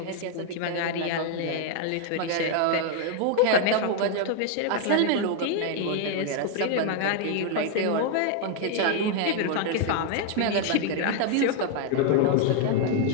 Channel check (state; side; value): different; both; correlation 0.00